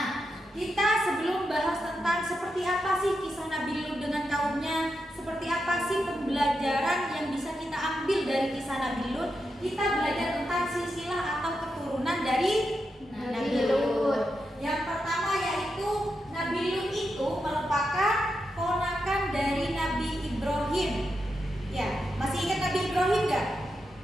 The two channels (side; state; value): both; normal; correlation 0.86